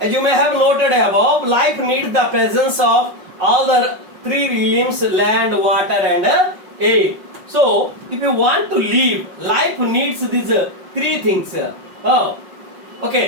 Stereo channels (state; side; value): late; left; 5.5 ms